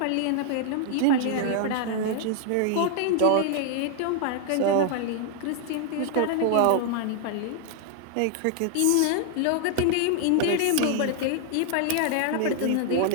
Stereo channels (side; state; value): both; different; correlation 0.00